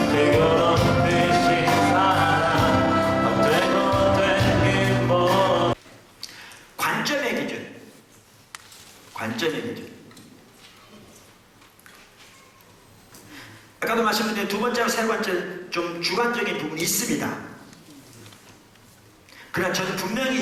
뜨거운 빛이 사랑 되고 되긴 뭐 관점의 기준. 관점의 기준. 아까도 말씀드린 두 번째와 세 번째 좀 주관적인 부분이 있습니다. 그러나 저는 분명히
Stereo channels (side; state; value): both; identical; correlation 1.00